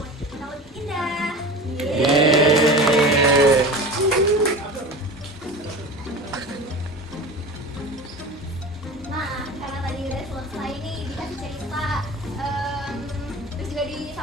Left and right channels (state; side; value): normal; both; correlation 0.33